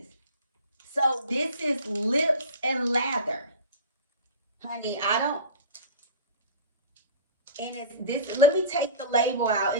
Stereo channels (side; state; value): both; inverted; correlation -0.33